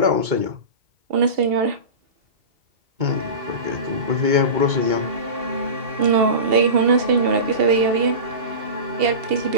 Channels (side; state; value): left; late; 2.8 ms